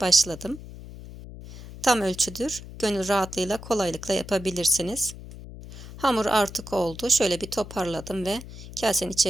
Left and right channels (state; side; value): noise; left; hum, 14 dB below the sound